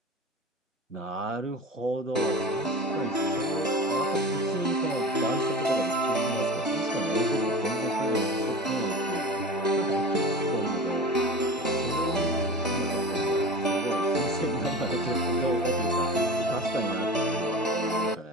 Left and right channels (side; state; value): both; normal; correlation 0.34